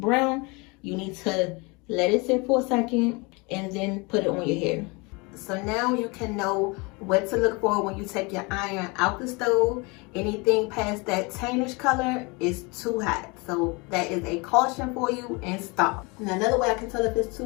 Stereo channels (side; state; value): right; quieter; 27.8 dB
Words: you need to let it sit for a second and then put it on your hair. So now you can know what to look for when you take your iron out the stove. Anything past that tannish color is too hot. So that is a caution for you, and stop. Now another way I can tell if it's too